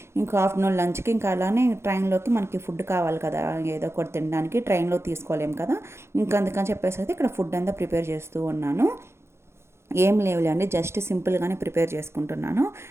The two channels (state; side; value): late; left; 0.13 ms